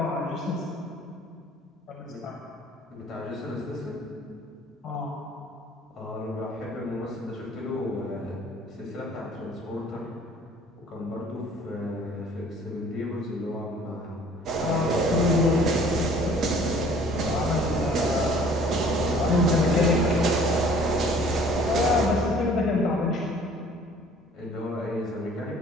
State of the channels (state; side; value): normal; both; correlation 0.53